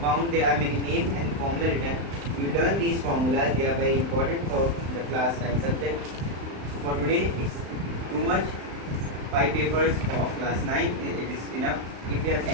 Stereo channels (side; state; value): left; late; 35 ms